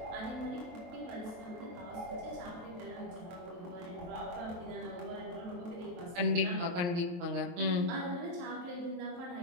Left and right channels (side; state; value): left; late; 23 ms